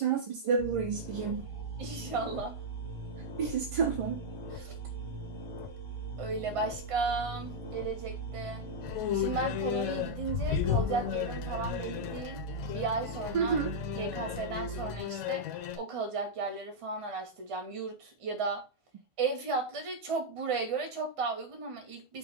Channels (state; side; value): late; left; 1.5 ms